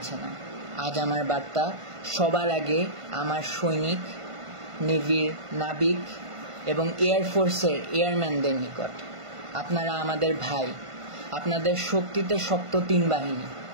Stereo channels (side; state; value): left; late; 1.5 ms